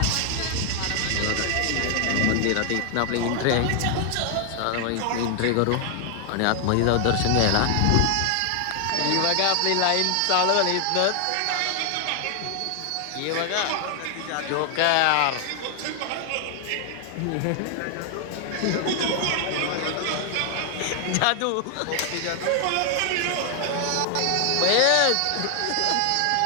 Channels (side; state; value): both; different; correlation 0.00